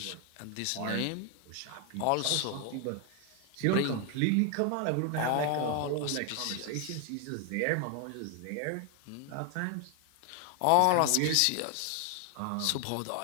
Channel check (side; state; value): both; different; correlation 0.00